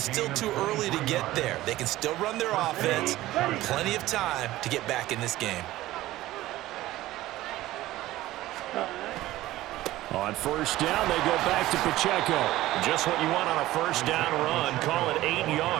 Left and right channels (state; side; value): quieter; left; 16.2 dB